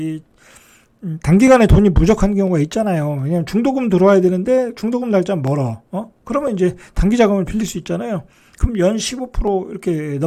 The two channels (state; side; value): identical; both; correlation 1.00